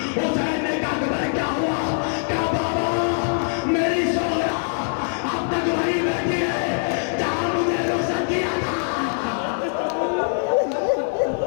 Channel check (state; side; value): silent; right; digital silence